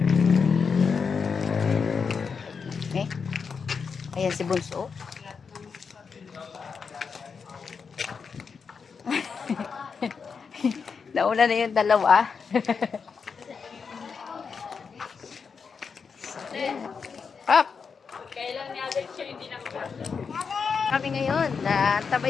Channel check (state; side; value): quieter; right; 5.7 dB